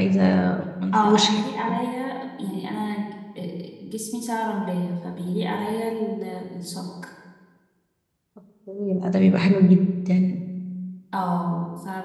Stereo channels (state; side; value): identical; both; correlation 1.00